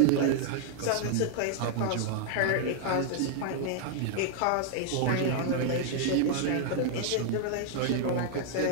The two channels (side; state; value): both; different; correlation 0.00